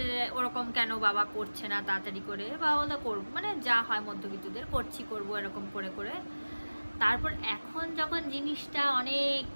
ওরকম কেন বাবা করছে না তাড়াতাড়ি করে, বা ওদের করবো, মানে যা হয় মধ্যবিত্তদের করবো এরকম করে করে। তারপর এখন যখন জিনিসটা অনেক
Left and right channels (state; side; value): inverted; both; correlation -1.00